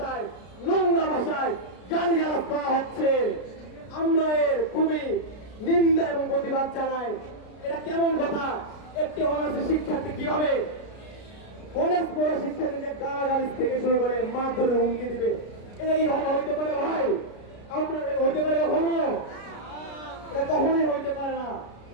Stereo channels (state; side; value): late; right; 33 ms